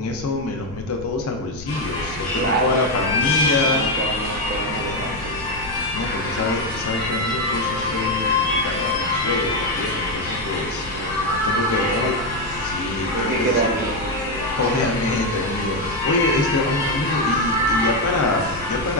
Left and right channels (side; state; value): left; noise; rumble, 15 dB below the sound